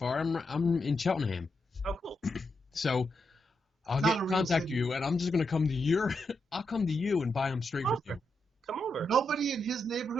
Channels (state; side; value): normal; both; correlation 0.83